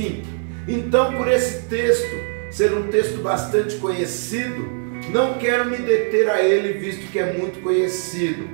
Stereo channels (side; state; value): left; silent; 63 dB below the other